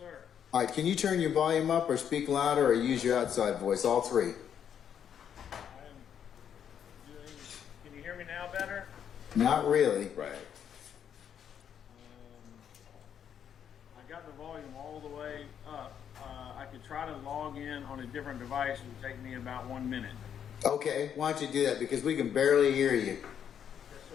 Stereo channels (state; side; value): quieter; right; 8.7 dB